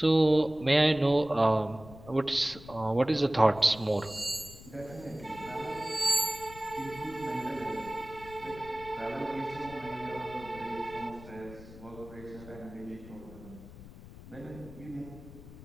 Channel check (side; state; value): left; noise; rumble, 17 dB below the sound